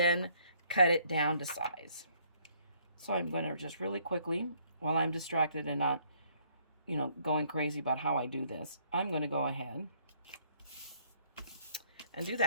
cut it down to size. So I'm going to just really quickly, while I'm distracted and not, you know, going crazy about how I do this, I'm going to go ahead and do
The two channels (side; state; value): both; inverted; correlation -0.65